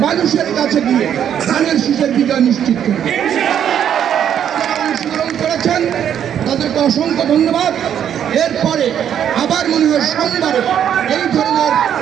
মানুষের কাছে গিয়ে ধানের শীষের বিজয় নিশ্চিত করব। অংশগ্রহণ করেছেন তাদেরকে অসংখ্য ধন্যবাদ। এরপরে আবার মনে হয় সোমবারে এই ধরনের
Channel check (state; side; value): quieter; left; 9.4 dB